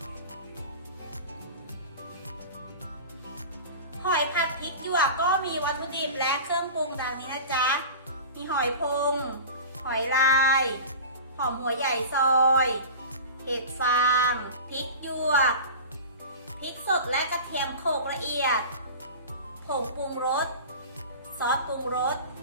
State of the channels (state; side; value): inverted; both; correlation -0.34